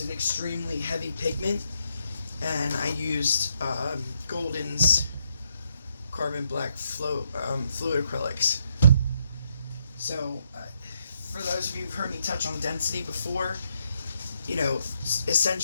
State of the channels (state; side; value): inverted; both; correlation -0.76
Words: an extremely heavy pigment, and I used Golden's carbon black fluid acrylics. So for those of you who've heard me touch on density before,